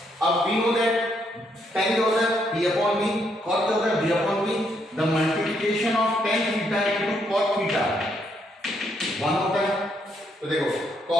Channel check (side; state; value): both; normal; correlation 0.74